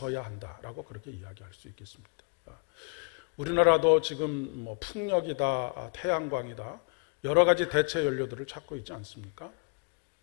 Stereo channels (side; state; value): right; quieter; 36.5 dB